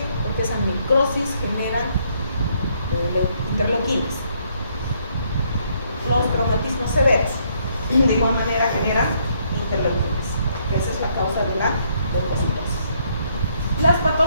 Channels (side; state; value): both; inverted; correlation -0.70